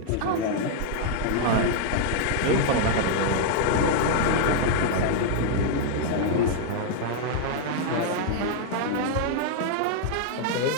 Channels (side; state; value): both; different; correlation 0.00